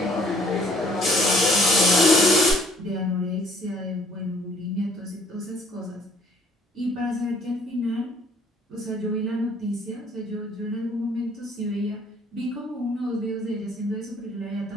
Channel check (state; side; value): normal; both; correlation 0.60